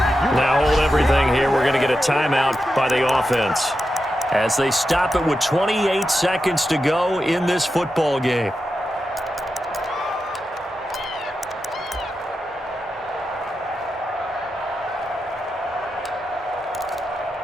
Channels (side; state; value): both; normal; correlation 0.89